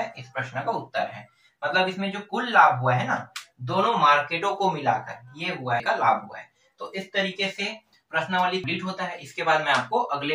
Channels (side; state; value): both; identical; correlation 1.00